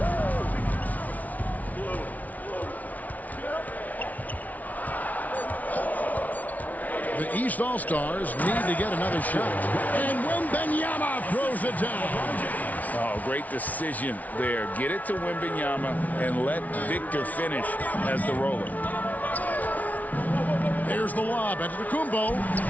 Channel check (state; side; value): late; right; 0.073 ms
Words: The East All-Stars need to get another shot. And Wembanyama throws it down. Oh, great decision there. Get it to Wembanyama and let Victor finish as the roller. There's the lob at Antetokounmpo